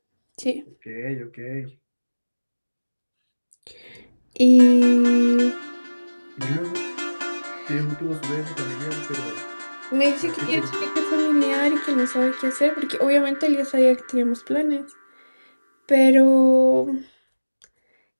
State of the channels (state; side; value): inverted; both; correlation -1.00